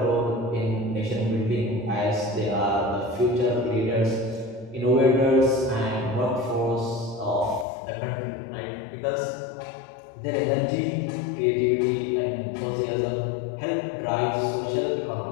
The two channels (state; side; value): drops out; right; at 7.7 s